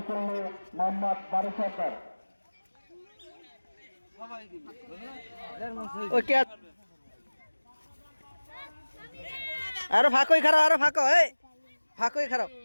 মোহাম্মদ বারু সরকার আরো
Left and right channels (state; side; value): inverted; both; correlation -1.00